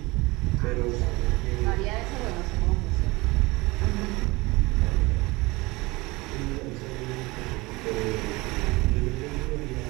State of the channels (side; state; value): left; quieter; 22.6 dB